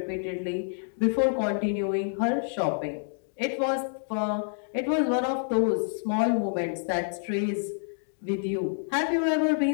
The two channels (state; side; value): silent; right; digital silence